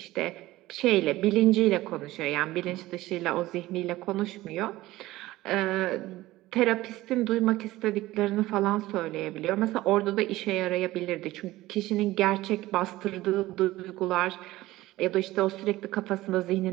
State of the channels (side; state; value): left; quieter; 17.3 dB